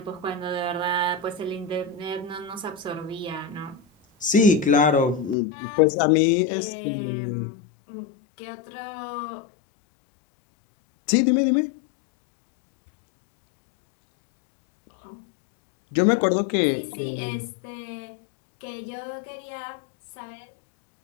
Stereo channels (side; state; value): right; drops out; at 5.4 s